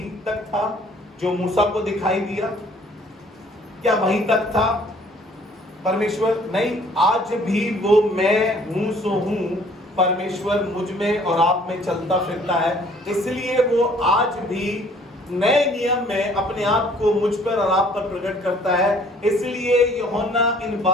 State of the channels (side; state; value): both; normal; correlation 0.57